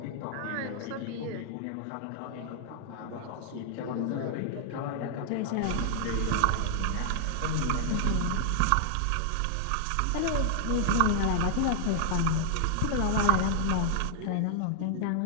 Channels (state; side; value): different; both; correlation 0.00